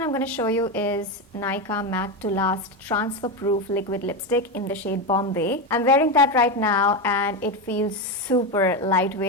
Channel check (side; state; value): both; normal; correlation 0.13